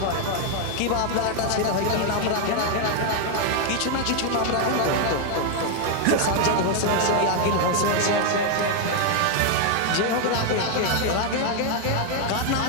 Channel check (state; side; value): different; both; correlation 0.01